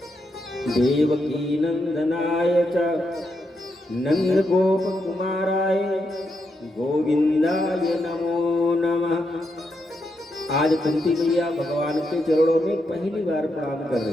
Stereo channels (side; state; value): both; normal; correlation 0.82